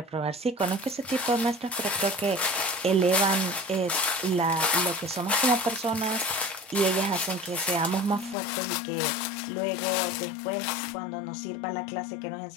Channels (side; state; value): right; drops out; at 8.3 s